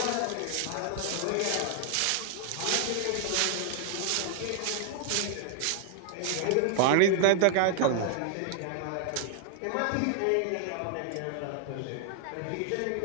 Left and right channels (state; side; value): different; both; correlation 0.00